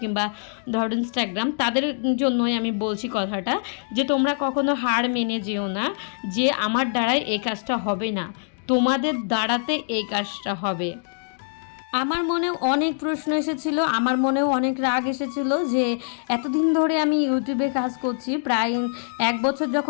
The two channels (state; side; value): silent; right; digital silence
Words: কিংবা ধরো ইনস্টাগ্রাম, তাদের জন্যই আমি বলছি কথাটা, যে তোমরা কখনো হার মেনে যেও না যে আমার দ্বারাই এই কাজটা হবে না, তোমাদের দ্বারাতে এই কাজটা হবে। আমার মনেও অনেক প্রশ্ন এসেছিলো, আমার মনেও অনেক রাগ এসেছিলো যে এতদিন ধরে আমি ইউটিউবে কাজ করছি, প্রায় 1 বছর